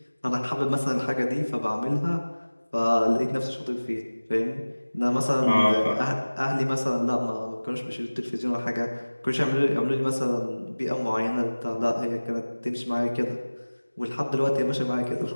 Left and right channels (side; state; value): both; inverted; correlation -1.00